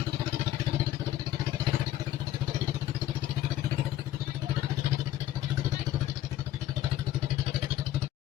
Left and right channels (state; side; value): quieter; right; 13.1 dB